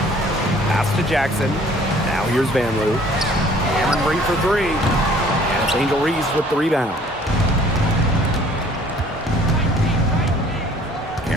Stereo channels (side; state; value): both; normal; correlation 0.55